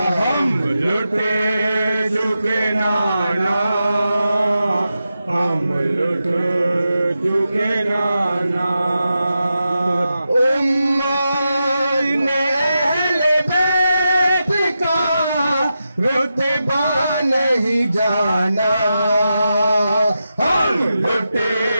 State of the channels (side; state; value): both; inverted; correlation -0.89